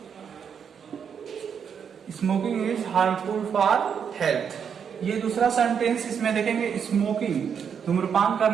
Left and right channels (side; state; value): left; quieter; 7.3 dB